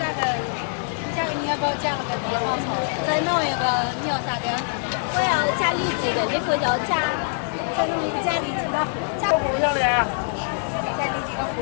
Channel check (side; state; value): right; silent; 63 dB below the other